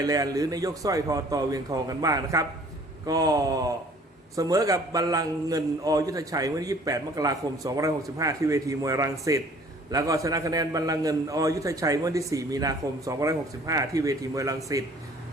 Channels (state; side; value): normal; both; correlation 0.54